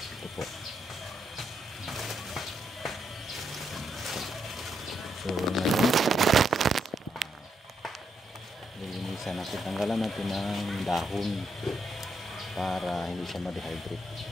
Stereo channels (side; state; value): both; normal; correlation 0.79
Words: Ito po. So ngayon lilinisan natin, tanggalan natin ng dahon para hindi siya ma-dehydrate.